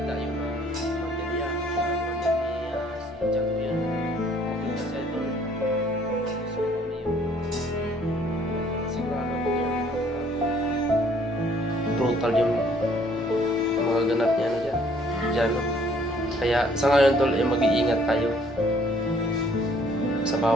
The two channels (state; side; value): normal; both; correlation 0.61